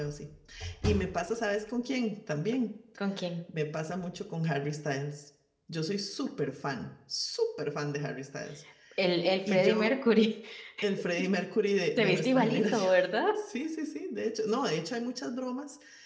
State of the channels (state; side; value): identical; both; correlation 1.00